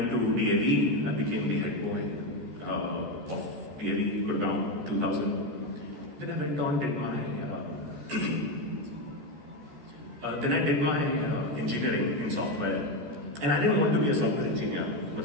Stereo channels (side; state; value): left; late; 14 ms